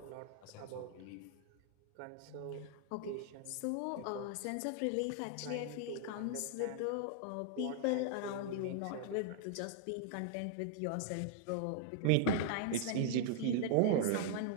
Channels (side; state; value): both; different; correlation 0.00